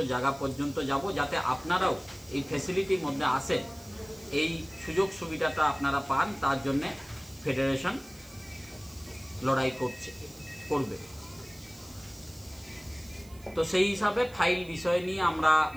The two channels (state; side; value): noise; right; hiss, 24 dB below the sound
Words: জায়গা পর্যন্ত যাব, যাতে আপনারাও এই ফ্যাসিলিটির মধ্যে আসেন, এই সুযোগ সুবিধাটা আপনারা পান। তার জন্যে ফেডারেশন লড়াই করবে। তো সেই হিসাবে ফাইল বিষয় নিয়ে আমরা